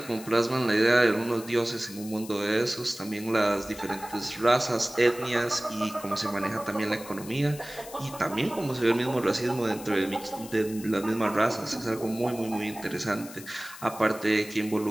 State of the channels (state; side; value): noise; left; hiss, 16 dB below the sound